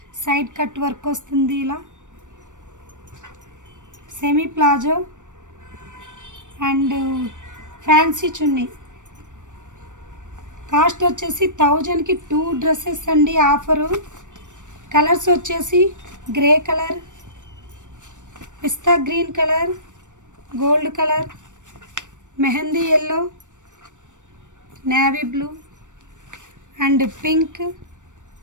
సైడ్ కట్ వర్క్ వస్తుంది. ఇలా semi palazzo and fancy chunni. Cost వచ్చేసి 1000కి 2 డ్రెస్సెస్ అండి. ఆఫరు కలర్స్ వచ్చేసి grey colour, pista green colour, gold colour, mehendi yellow, navy blue and pink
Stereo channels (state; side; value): late; left; 0.86 ms